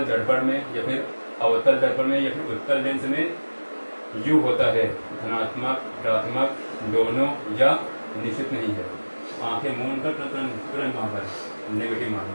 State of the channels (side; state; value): both; inverted; correlation -1.00